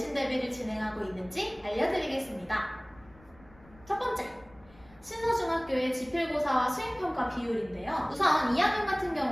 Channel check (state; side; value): noise; left; rumble, 26 dB below the sound